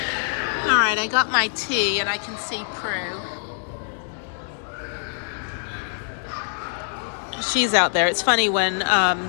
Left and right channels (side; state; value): right; silent; digital silence